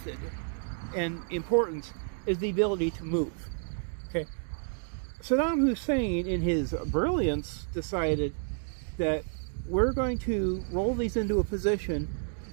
and importance is the ability to move. Okay, Saddam Hussein, in his brilliance, decided that we're going to roll these into a position,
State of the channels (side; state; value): left; silent; 58 dB below the other